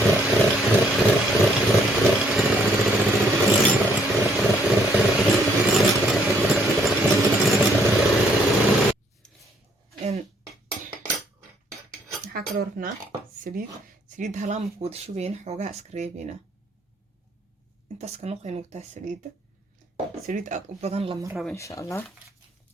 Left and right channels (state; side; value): normal; both; correlation 0.67